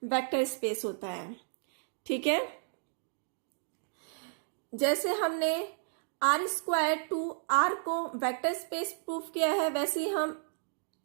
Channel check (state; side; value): silent; left; digital silence